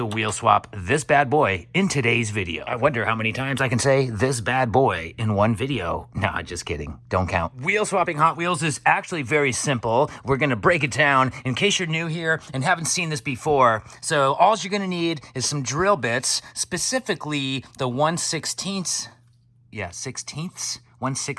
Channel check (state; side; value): identical; both; correlation 1.00